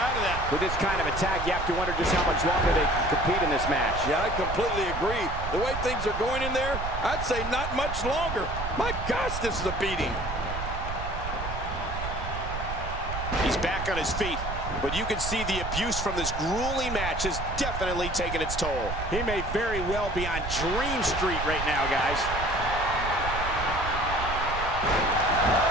of that. With this kind of attack, you have to wonder just how much longer they can compete in this match. Yeah, I completely agree. The way things are going in there, I'd say not much longer. My gosh, this is a beating. He's back on his feet, but you can see the abuse from this grueling match has definitely taken its toll. He may very well be on Dream Street right now, guys.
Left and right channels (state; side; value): noise; right; rumble, 6 dB below the sound